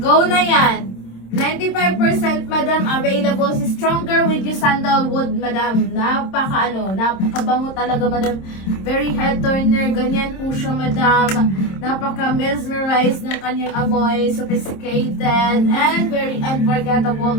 na yan! 95% madam available si Stronger with you sandalwood madam. Napakabango talaga madam. Very head turner, ganyan po siya madam. Napaka mesmerized ng kanyang amoy, sophisticated and very unforgettable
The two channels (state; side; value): late; right; 26 ms